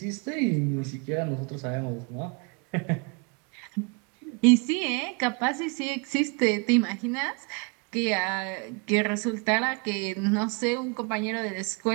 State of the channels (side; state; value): left; quieter; 33.3 dB